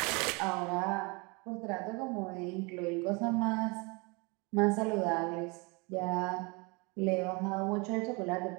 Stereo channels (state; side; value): quieter; left; 28.9 dB